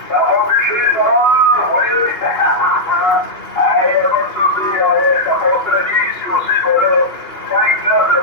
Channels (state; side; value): late; right; 2.4 ms